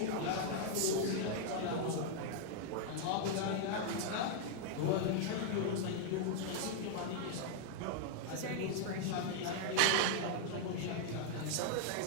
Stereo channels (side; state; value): both; different; correlation 0.00